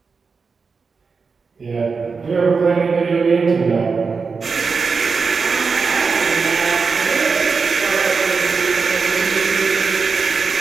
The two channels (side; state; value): left; quieter; 5.0 dB